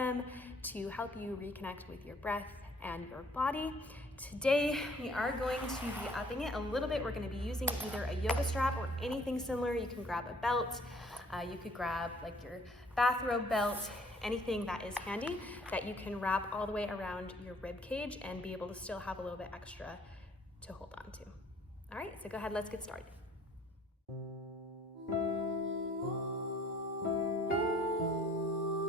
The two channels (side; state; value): both; normal; correlation 0.58